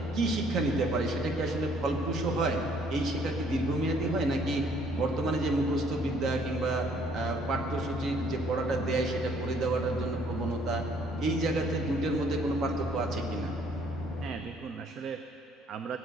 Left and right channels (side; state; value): both; normal; correlation 0.62